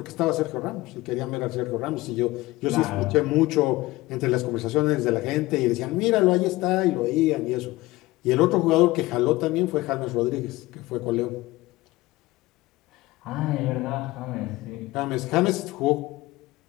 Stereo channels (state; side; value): quieter; right; 19.4 dB